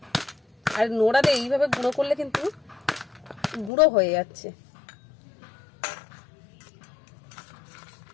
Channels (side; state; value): right; drops out; at 3.7 s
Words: আর নোড়াতে এইভাবে গুঁড়ো করলে কিন্তু গুঁড়ো হয়ে যাচ্ছে।